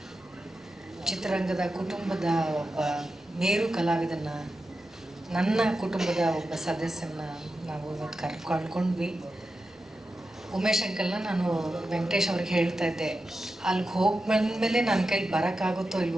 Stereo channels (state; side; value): normal; both; correlation 0.91